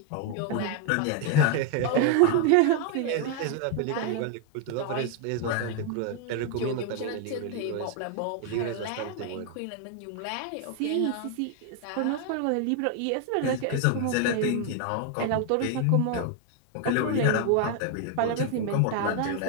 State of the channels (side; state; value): both; different; correlation 0.01